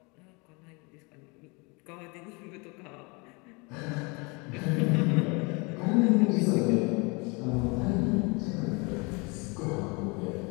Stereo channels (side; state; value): right; quieter; 29.2 dB